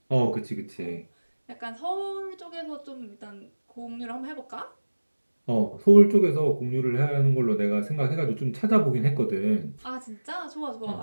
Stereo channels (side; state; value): both; inverted; correlation -1.00